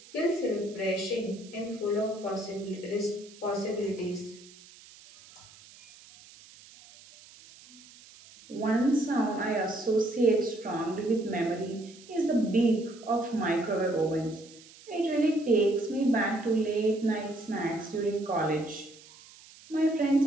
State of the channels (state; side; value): noise; right; hiss, 22 dB below the sound